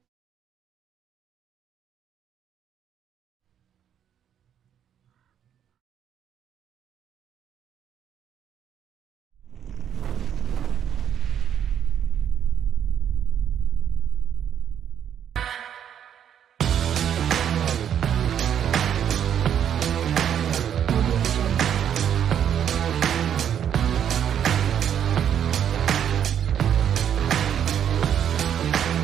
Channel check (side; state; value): left; quieter; 9.2 dB